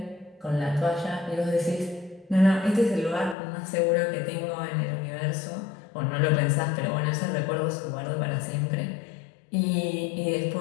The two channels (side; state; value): right; drops out; at 3.4 s